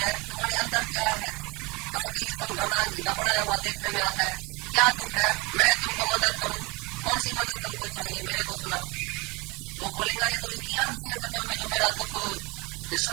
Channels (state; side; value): quieter; left; 26.2 dB